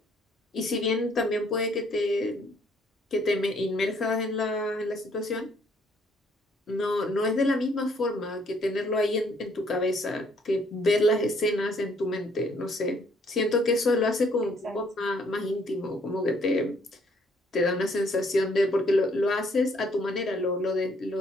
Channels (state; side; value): normal; both; correlation 0.65